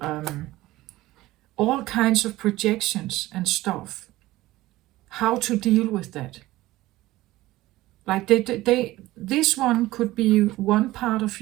all kinds of projections and stuff, how to deal with that. Like this one could be one part of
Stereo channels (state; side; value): quieter; left; 17.4 dB